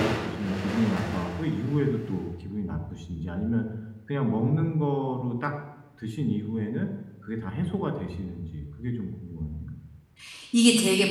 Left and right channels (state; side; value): identical; both; correlation 1.00